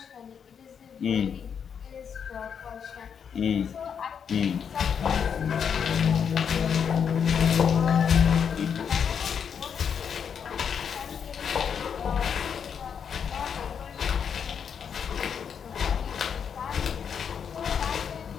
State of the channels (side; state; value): right; quieter; 7.3 dB